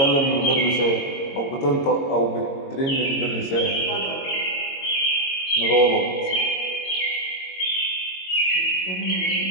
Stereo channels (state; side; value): late; right; 22 ms